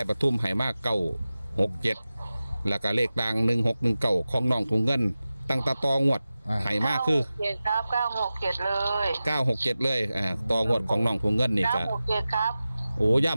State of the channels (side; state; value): both; inverted; correlation -0.95